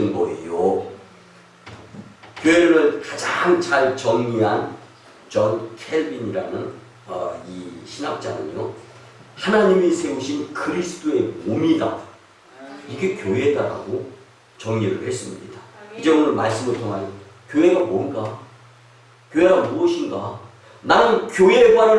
거예요. 교회를 가장 잘 정리한 존 켈빈이라는 이 신학자는요, 하나님이 세우신 그리스도의 몸이다, 이게 교회다라고 정리를 했습니다. 이제 오늘 말씀을 통하여 교회가 뭔가, 교회가 무엇인가, 나는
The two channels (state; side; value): identical; both; correlation 1.00